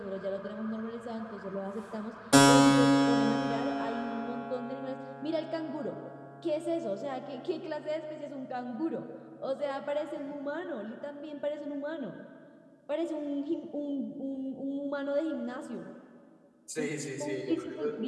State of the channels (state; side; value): identical; both; correlation 1.00